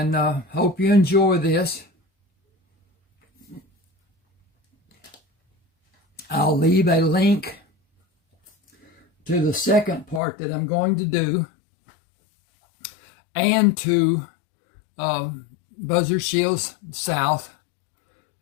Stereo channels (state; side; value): drops out; right; at 10.2 s